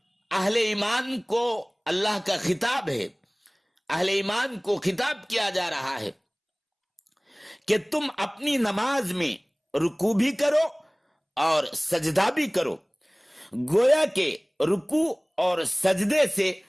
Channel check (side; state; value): both; identical; correlation 1.00